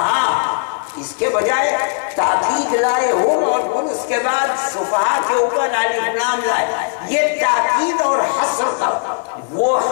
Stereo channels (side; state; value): right; silent; digital silence